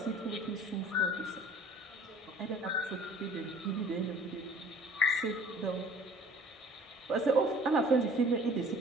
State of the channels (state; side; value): normal; both; correlation 0.49